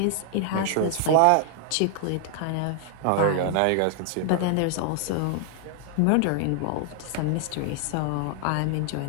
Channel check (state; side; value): different; both; correlation -0.01